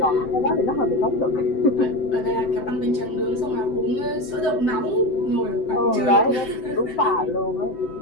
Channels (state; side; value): late; right; 7.8 ms